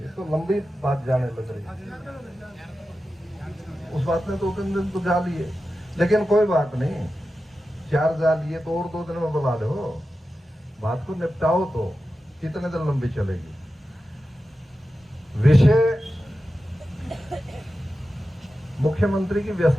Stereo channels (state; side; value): normal; both; correlation 0.92